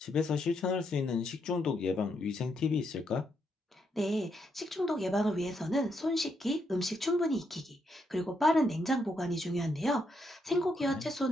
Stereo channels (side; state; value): both; normal; correlation 0.78